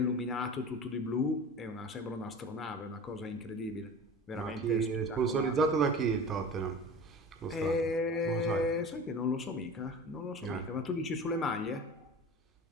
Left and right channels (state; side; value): normal; both; correlation 0.36